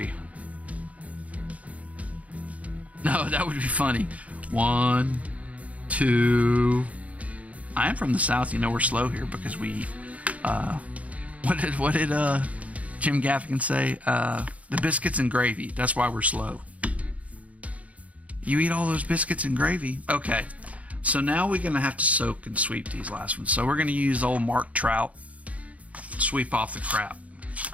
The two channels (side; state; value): left; late; 0.068 ms